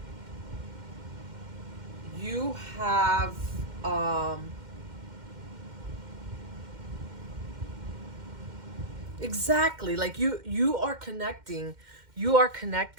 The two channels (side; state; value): left; late; 2.1 ms